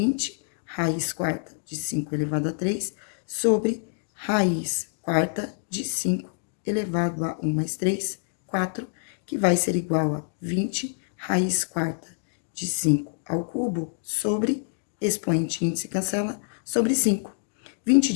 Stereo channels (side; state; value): right; silent; digital silence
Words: raiz quarta de 5 elevado a 3 sobre raiz quarta de 5 elevado a 1 mais 3, 4, que vai ser igual a 20 raiz quarta de 5 ao cubo sobre expoente índice cancela sobre 5. 20